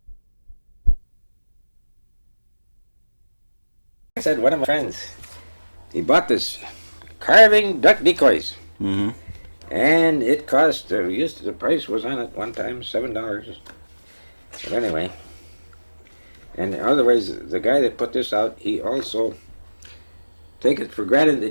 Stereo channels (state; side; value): inverted; both; correlation -1.00